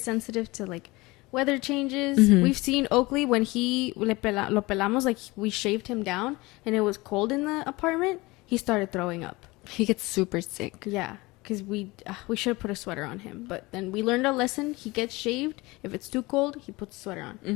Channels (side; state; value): right; quieter; 22.3 dB